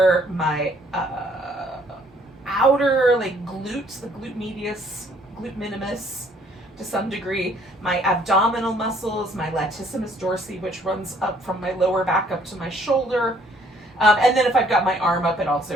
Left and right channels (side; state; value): both; normal; correlation 0.62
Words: my outer like glutes, the glute medius, glute minimus to some degree, my abdominal muscles, my latissimus dorsi, which runs up from my lower back up to my shoulder. And then if I've got my arm up, it also